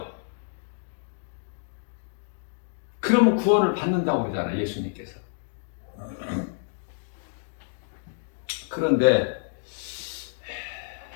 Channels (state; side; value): silent; right; digital silence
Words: 그러면 구원을 받는다고 그러잖아, 예수님께서. 그런데